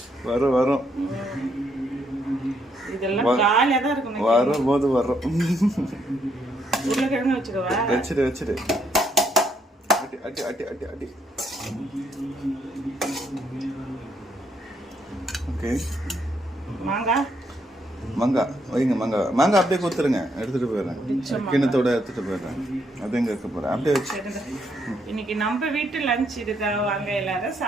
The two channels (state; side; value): normal; both; correlation 0.74